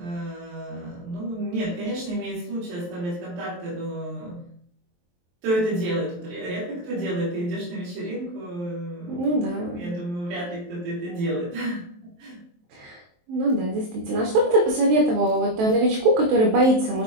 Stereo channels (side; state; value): left; late; 23 ms